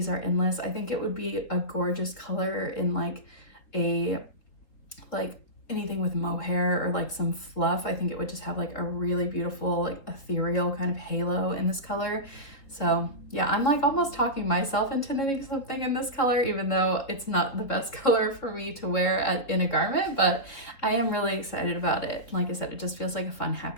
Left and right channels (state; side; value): late; right; 3.8 ms